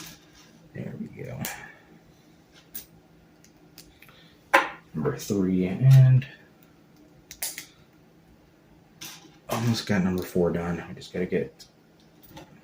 There we go. Number 3 and almost got number 4 done. We just gotta get,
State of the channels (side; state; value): both; identical; correlation 1.00